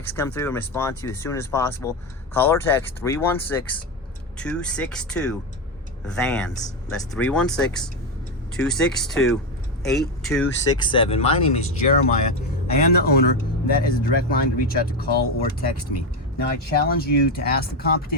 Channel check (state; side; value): normal; both; correlation 0.11